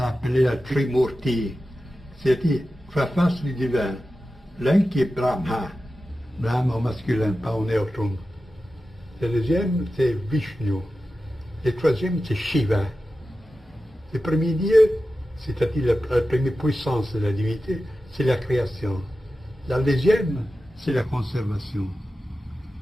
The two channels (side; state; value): both; normal; correlation 0.93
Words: appelée la Trimurti, c'est-à-dire trois faces du divin. L'un qui est Brahma au masculin, pas au neutrum. Le deuxième, c'est Vishnu. Le troisième, c'est Shiva. Le premier Dieu, c'est-à-dire la première puissance de la divinité, c'est la création. La deuxième, c'est la conservation.